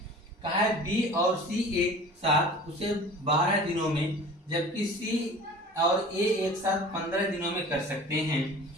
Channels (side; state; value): both; normal; correlation 0.42